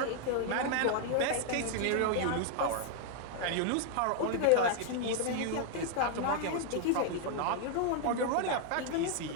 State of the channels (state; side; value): different; both; correlation 0.00